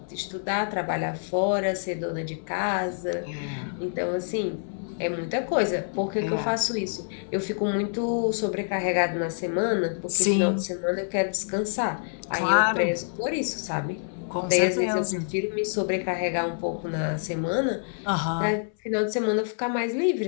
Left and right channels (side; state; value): right; silent; 60 dB below the other